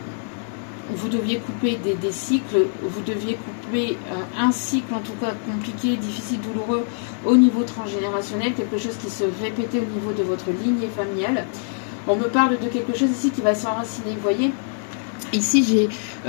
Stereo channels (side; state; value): right; silent; digital silence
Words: vous deviez couper des cycles, vous deviez couper un cycle en tout cas compliqué, difficile, douloureux au niveau transgénérationnel, quelque chose qui se répétait au niveau de votre lignée familiale. On me parle de quelque chose ici qui va s'enraciner, vous voyez. Ici, j'ai